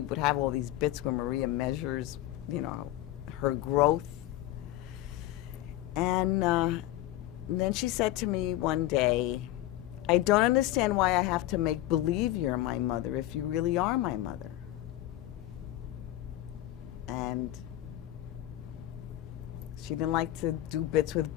would have all these bits where Maria measures, you know, her growth. And then she said to me one day, I don't understand why I have to make believe you're my mother if you really are my mother. And she didn't like to do bits with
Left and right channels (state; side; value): quieter; right; 15.0 dB